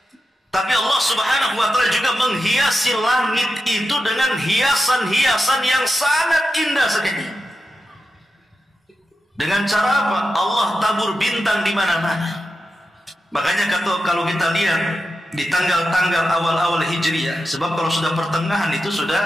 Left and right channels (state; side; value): normal; both; correlation 0.90